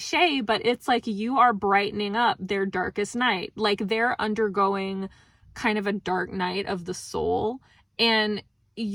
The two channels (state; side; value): identical; both; correlation 1.00